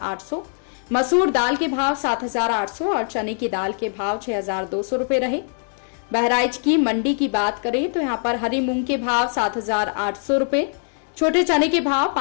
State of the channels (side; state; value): right; silent; 64 dB below the other